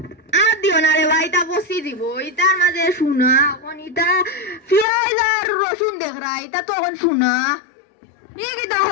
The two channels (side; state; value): right; drops out; at 4.9 s